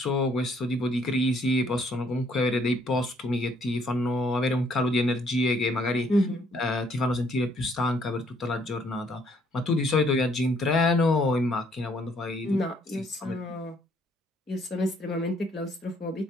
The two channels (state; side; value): normal; both; correlation 0.66